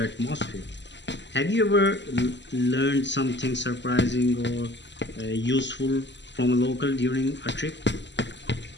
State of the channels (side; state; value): right; late; 0.52 ms